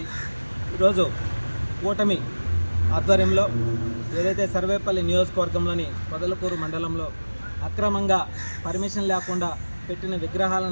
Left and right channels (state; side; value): inverted; both; correlation -1.00